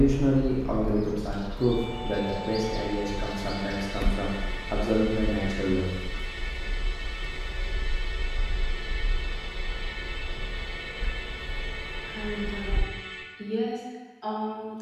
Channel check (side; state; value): both; identical; correlation 1.00